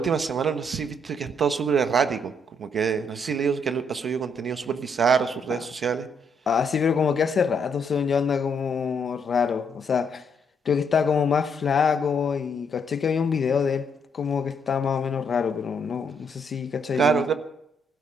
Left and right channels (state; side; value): normal; both; correlation 0.73